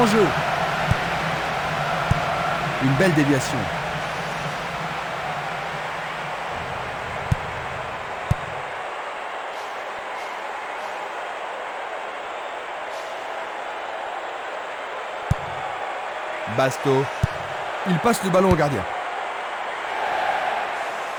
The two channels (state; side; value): identical; both; correlation 1.00